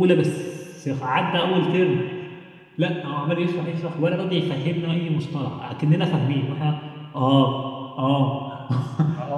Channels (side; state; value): both; identical; correlation 1.00